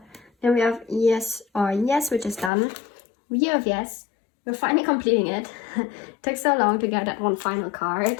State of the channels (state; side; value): drops out; right; at 2.5 s